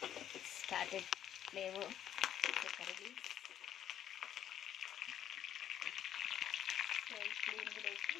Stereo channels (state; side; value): quieter; right; 10.4 dB